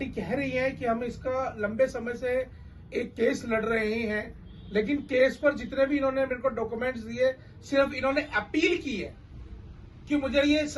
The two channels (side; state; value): both; identical; correlation 1.00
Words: कह रही है कि हम इसका लंबे समय से एक केस लड़ रहे हैं, लेकिन केस पर जितने भी इन्होंने मेरे को डॉक्यूमेंट्स दिए, सिर्फ इन्होंने अपील की है कि मुझे ये